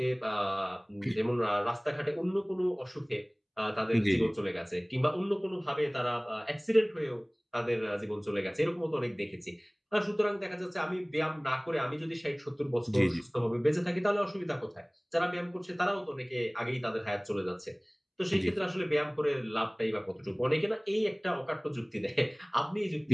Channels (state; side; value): identical; both; correlation 1.00